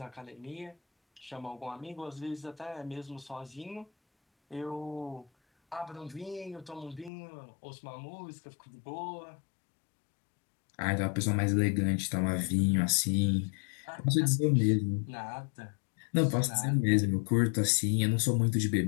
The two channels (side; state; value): right; drops out; at 7.1 s